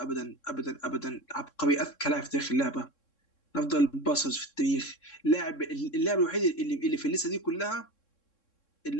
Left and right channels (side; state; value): right; late; 3.7 ms